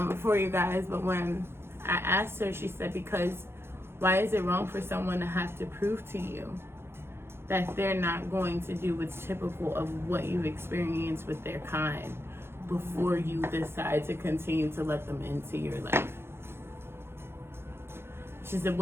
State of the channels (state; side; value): late; left; 0.12 ms